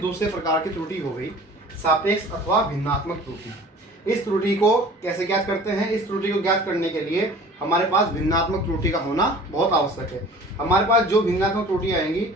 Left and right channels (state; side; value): normal; both; correlation 0.45